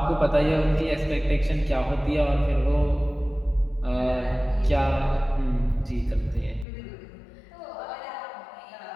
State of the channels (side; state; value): right; drops out; at 6.7 s